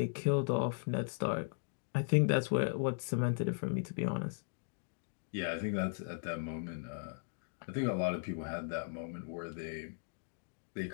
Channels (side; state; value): right; silent; digital silence